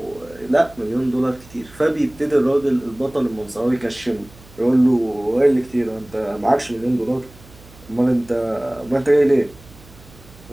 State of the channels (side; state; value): right; noise; hum, 23 dB below the sound